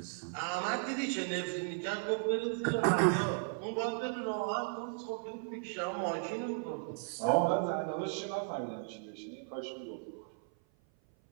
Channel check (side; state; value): left; silent; 54 dB below the other